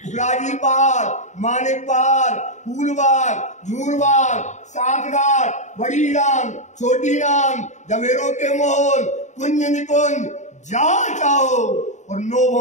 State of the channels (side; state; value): right; late; 0.34 ms